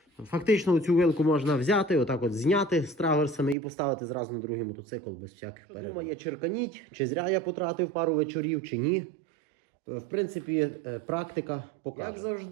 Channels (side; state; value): left; drops out; at 3.6 s